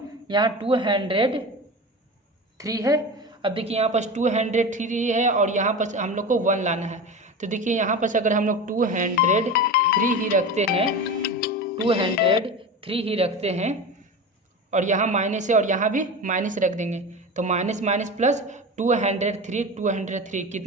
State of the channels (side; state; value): both; normal; correlation 0.27